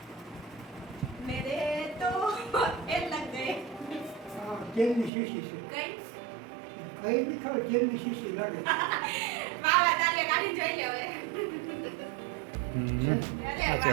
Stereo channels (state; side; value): drops out; left; at 5.1 s